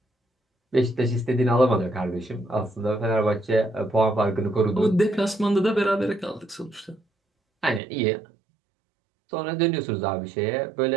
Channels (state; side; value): drops out; left; at 7.8 s